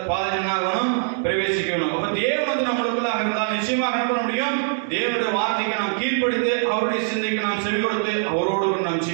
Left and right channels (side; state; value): left; silent; digital silence